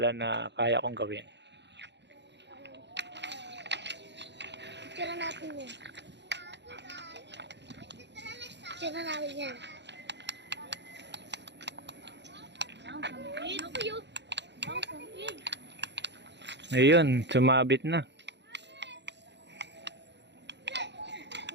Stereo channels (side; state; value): left; late; 0.51 ms